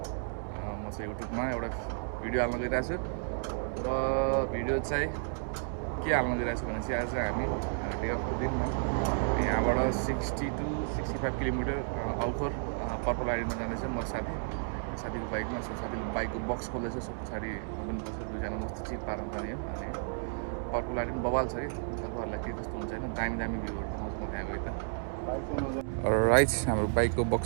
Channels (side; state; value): left; silent; digital silence